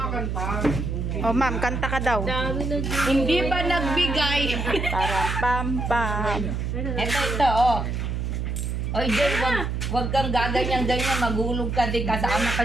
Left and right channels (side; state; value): right; noise; hum, 2 dB below the sound